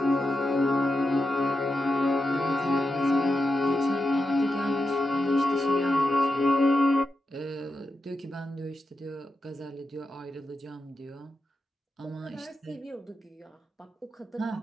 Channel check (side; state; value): both; normal; correlation 0.88